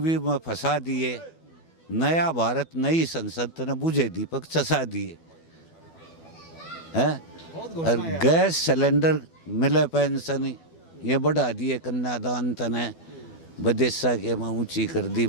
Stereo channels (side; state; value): right; late; 12 ms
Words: में फंसा दिए। नया भारत नई संसद ने बुझे दीपक चसा दिए। है। बहुत और घोषणा है। गैस सिलेंडर मिले पेंशन ये बढ़ा दिए, कन्यादान तने बदेसा के में ऊंची कर दी